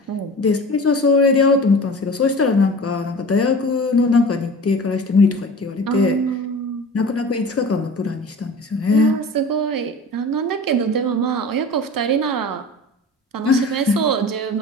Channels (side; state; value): both; normal; correlation 0.38